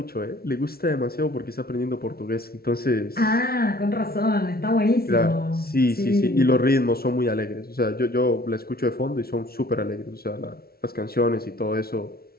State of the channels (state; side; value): late; right; 0.44 ms